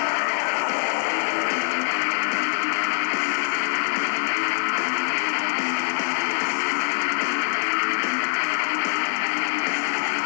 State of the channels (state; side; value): silent; right; digital silence